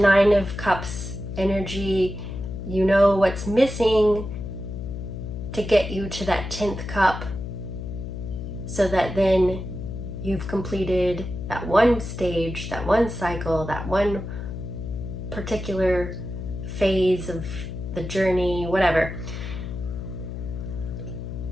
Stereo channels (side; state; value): left; noise; hum, 7 dB below the sound